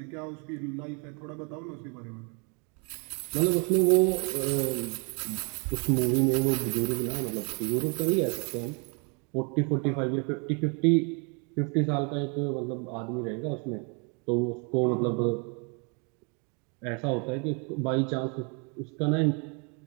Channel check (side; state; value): left; quieter; 35.4 dB